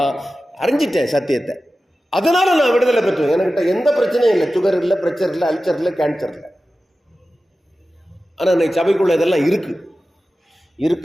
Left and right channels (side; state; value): both; normal; correlation 0.94